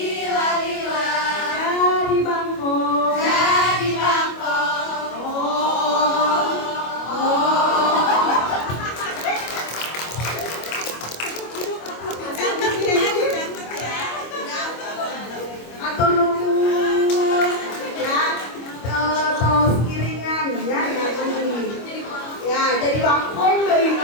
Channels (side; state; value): right; late; 25 ms